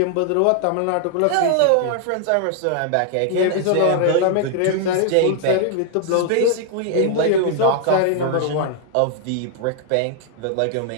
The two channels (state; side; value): different; both; correlation 0.00